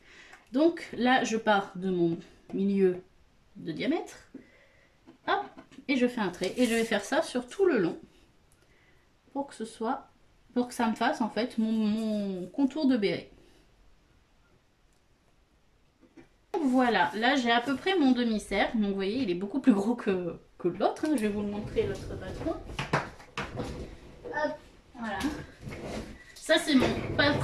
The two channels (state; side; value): identical; both; correlation 1.00